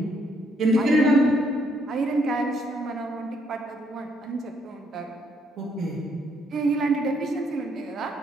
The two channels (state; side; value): normal; both; correlation 0.71